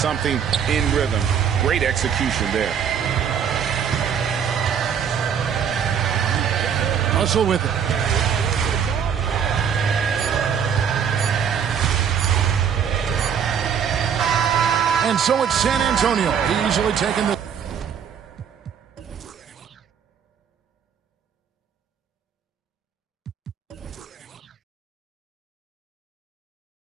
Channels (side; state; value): left; quieter; 7.7 dB